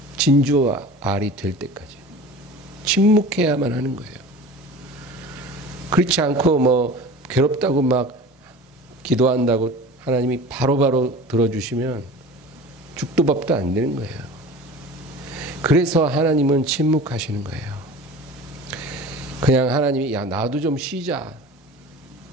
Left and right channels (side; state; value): both; normal; correlation 0.38